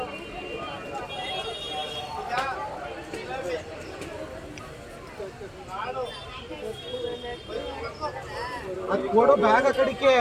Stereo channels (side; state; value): both; identical; correlation 1.00